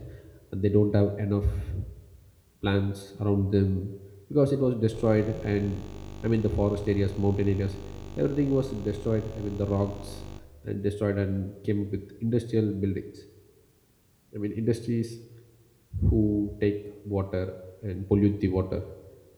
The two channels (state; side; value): identical; both; correlation 1.00